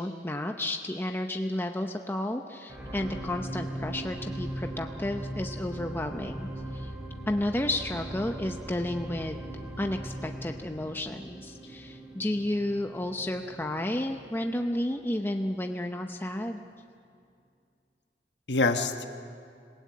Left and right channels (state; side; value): normal; both; correlation 0.69